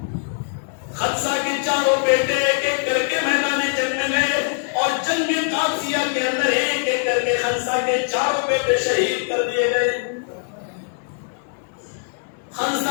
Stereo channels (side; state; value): right; silent; digital silence